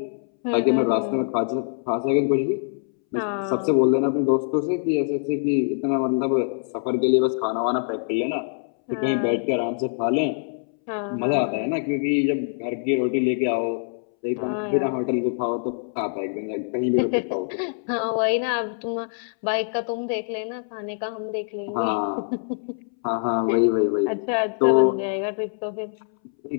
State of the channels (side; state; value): right; silent; 62 dB below the other